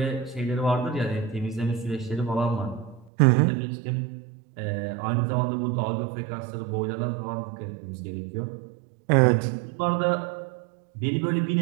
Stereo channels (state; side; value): drops out; left; at 3.1 s